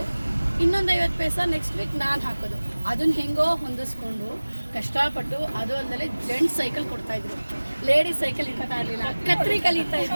ಇನ್ನೊಂದು 50 ಪೈಸಾ ನೆಕ್ಸ್ಟ್ ವೀಕ್ ನಾನು ಹಾಕೋದು. ಅದನ್ನ ಹೆಂಗೋ ಹೊಂದಿಸ್ಕೊಂಡು ಕಷ್ಟಪಟ್ಟು, ಅದು ಅಂದಲೇ ಜೆಂಟ್ಸ್ ಸೈಕಲ್ ಕೊಡ್ತಾಯಿದ್ರು, ಲೇಡೀಸ್ ಸೈಕಲ್ ಇರ್ತಾ ಇರಲಿಲ್ಲ. ಕತ್ರಿ ಕಲಿತಾ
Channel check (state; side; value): inverted; both; correlation -1.00